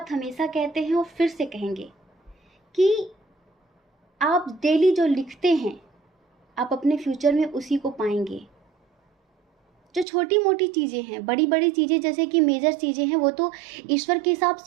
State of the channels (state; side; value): drops out; left; at 10.1 s